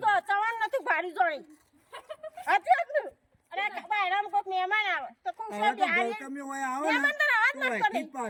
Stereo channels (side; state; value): both; identical; correlation 1.00